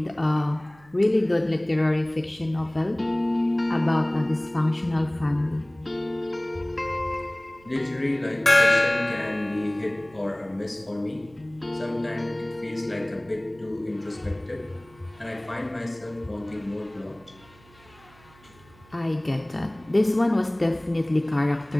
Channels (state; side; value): noise; right; hum, 27 dB below the sound